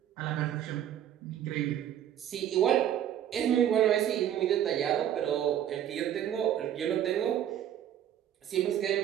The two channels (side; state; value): left; quieter; 10.7 dB